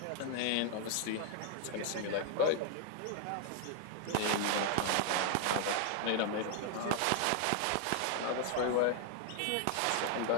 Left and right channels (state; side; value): different; both; correlation 0.00